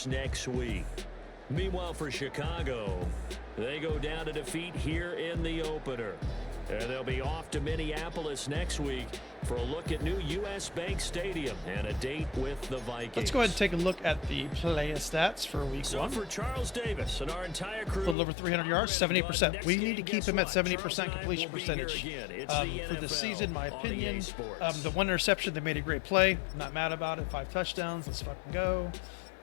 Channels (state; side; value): drops out; right; at 18.2 s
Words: next week. Meanwhile, for Chicago, they go down to defeat here in the opener. And they'll be off to Minneapolis next week for a look at new U.S. Bank Stadium and a date with the Vikings. Let's go ahead and take a look at the player stats for week So 1. for Charles Davis and our entire crew, A little over 300 yards, 70%. We need to keep him at 70% completion percentage. For the season, my opinion. The one interception, they made a great play. Not mad about it. 5 touchdowns. Let's fucking go.